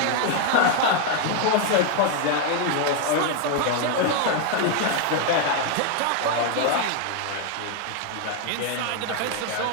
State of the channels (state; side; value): different; both; correlation 0.01